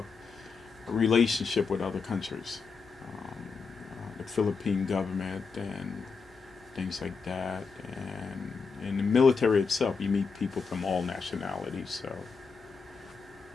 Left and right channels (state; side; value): quieter; right; 5.1 dB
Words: a relationship with other countries, the Philippine government and things like that. And in the military itself, you meet people from all nationalities, so